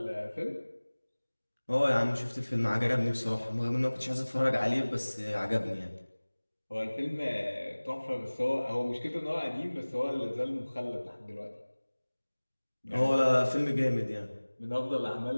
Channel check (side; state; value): both; inverted; correlation -1.00